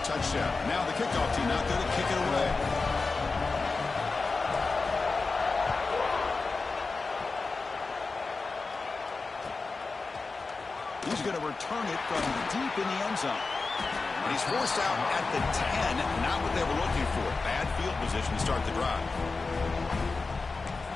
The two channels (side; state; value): right; quieter; 4.0 dB